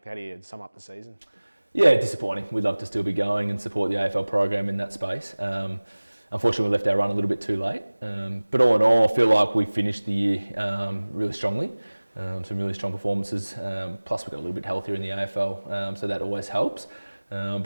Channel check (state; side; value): inverted; both; correlation -1.00